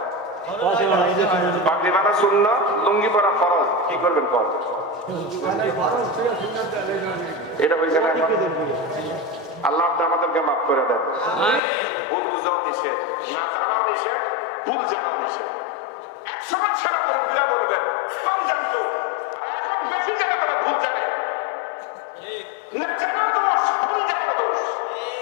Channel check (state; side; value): drops out; right; at 11.6 s